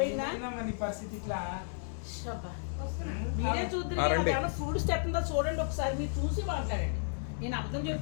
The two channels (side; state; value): right; silent; digital silence